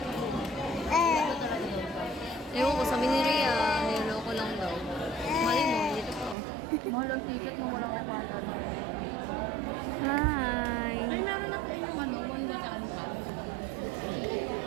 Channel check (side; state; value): left; drops out; at 6.4 s